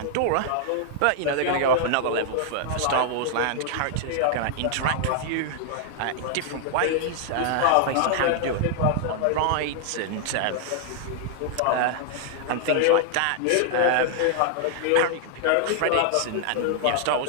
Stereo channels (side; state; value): both; different; correlation 0.00